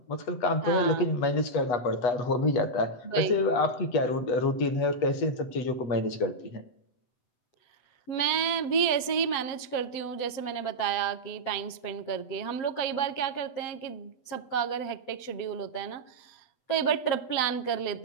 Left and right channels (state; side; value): late; right; 8.0 ms